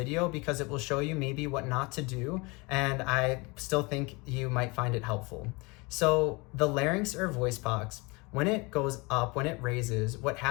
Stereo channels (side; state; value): right; quieter; 26.8 dB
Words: because it will show you maybe what not to do, and I still think you might find it helpful. So the larynx or voice box, when it goes up, when it raises, what